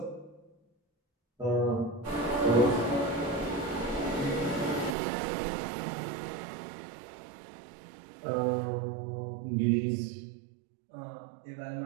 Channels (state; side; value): drops out; left; at 5.0 s